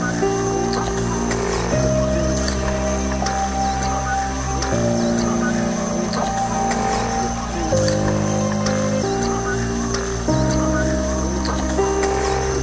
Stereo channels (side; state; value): both; identical; correlation 1.00